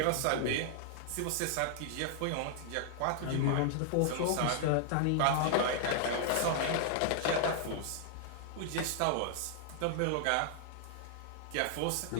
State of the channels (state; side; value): different; both; correlation -0.01